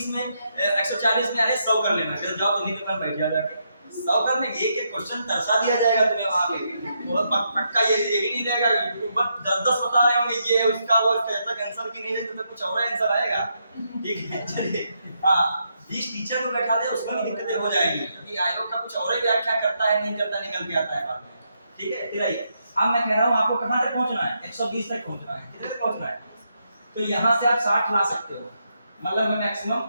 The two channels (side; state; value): both; inverted; correlation -0.80